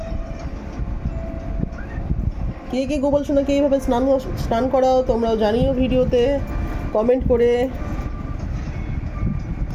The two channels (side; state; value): both; identical; correlation 1.00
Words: কে কে গোপাল সোনাকে এইভাবে স্নান করাও তোমরাও জানিও ভিডিওতে কমেন্ট করে।